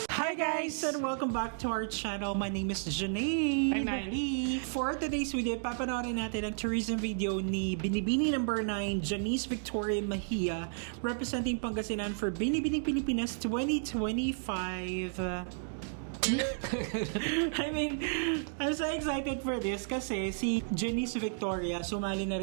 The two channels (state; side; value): silent; left; digital silence